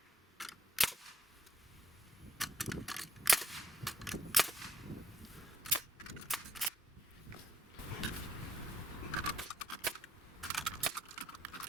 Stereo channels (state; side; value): normal; both; correlation 0.73